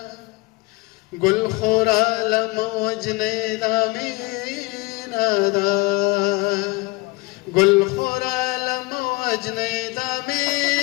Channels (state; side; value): quieter; right; 24.4 dB